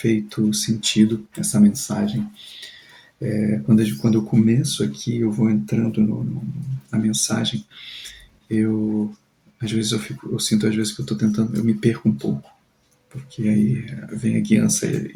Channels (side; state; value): both; identical; correlation 1.00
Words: sentido essa mensagem. Quando eu começo aqui, eu vou entrando na mensagem, às vezes eu sinto às vezes que eu me perco um pouco, porque aí vem a guiança